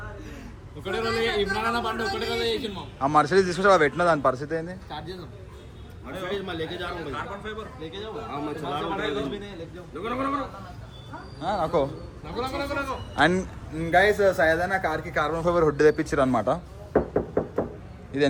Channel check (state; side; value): identical; both; correlation 1.00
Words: ఒకటే రోజు ఇమ్రాన్ అన్న బండి ఒకటే రోజు చేసిండు. ఆ మర్సిడీస్ తీసుకొచ్చి పెట్టిన దాని పరిస్థితి ఏంది? స్టార్ట్ చేద్దాం. అండ్ గైస్ సయదన్న కార్కి కార్బన్ ఫైబర్ హుడ్ తెప్పించారు అనమాట. ఇది